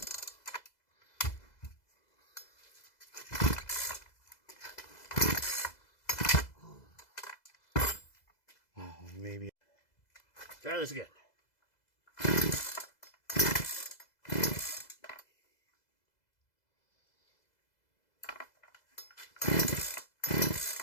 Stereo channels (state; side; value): late; right; 2.0 ms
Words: Maybe. Try this again.